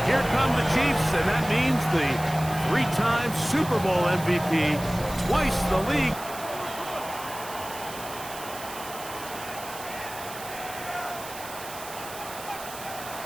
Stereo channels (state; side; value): noise; right; hiss, 13 dB below the sound